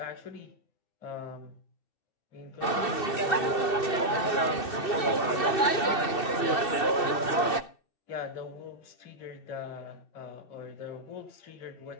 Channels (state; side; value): late; right; 2.7 ms